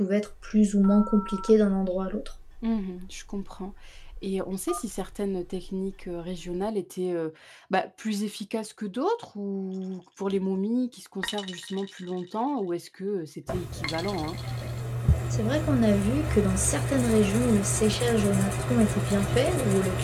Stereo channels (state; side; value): identical; both; correlation 1.00